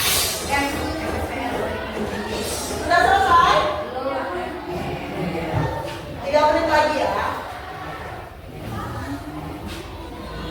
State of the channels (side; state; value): both; identical; correlation 1.00